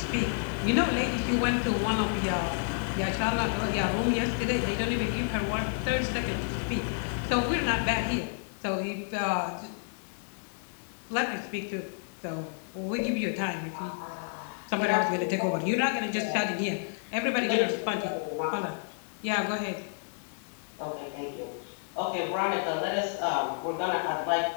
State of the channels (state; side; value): silent; right; 57 dB below the other